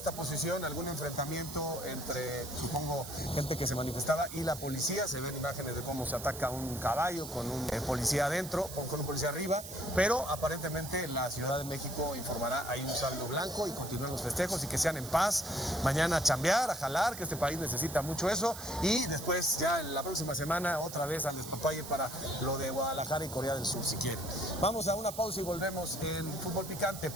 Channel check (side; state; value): right; noise; hiss, 11 dB below the sound